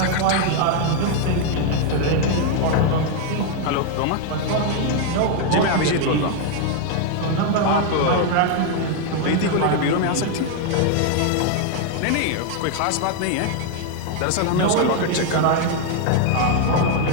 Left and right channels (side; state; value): both; different; correlation 0.00